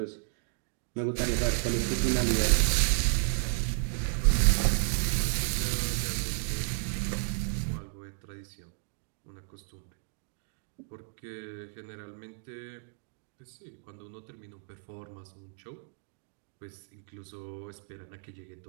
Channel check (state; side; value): silent; left; digital silence